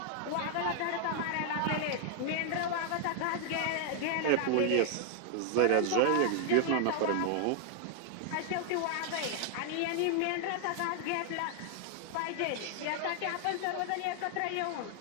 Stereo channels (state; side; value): different; both; correlation 0.00